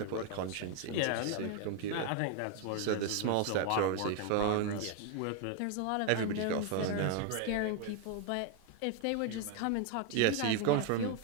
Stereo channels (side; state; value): both; different; correlation 0.01